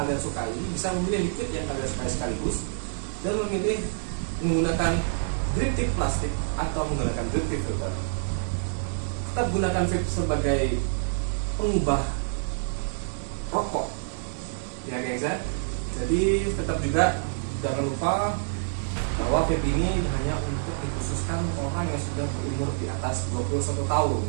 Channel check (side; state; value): left; silent; digital silence